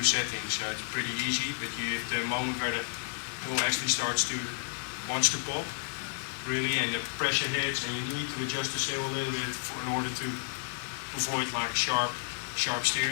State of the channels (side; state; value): right; silent; 57 dB below the other